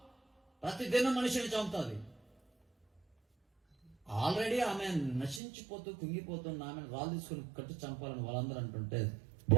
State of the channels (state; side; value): drops out; left; at 5.4 s